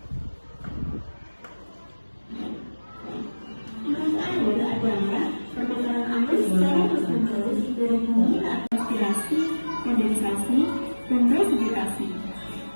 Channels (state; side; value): inverted; both; correlation -1.00